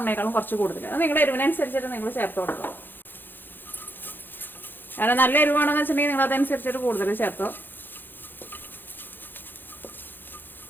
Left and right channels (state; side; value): late; right; 0.095 ms